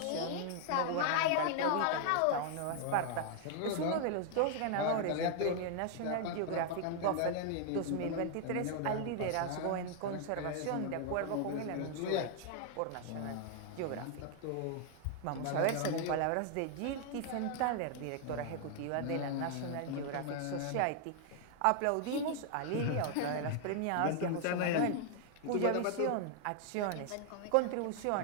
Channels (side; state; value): both; different; correlation 0.00